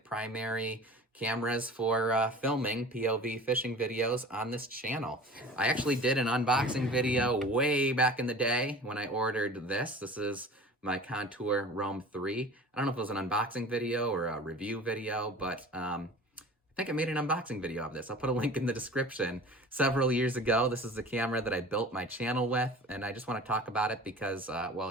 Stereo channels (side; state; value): both; normal; correlation 0.41